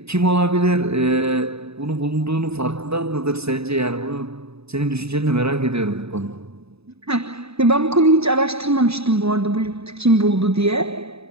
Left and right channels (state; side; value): late; left; 0.79 ms